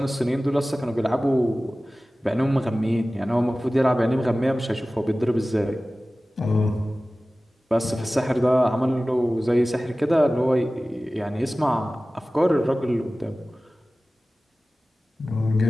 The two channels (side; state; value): both; normal; correlation 0.97